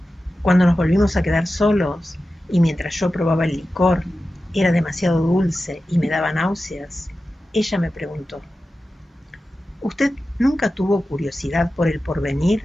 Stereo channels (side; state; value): both; normal; correlation 0.93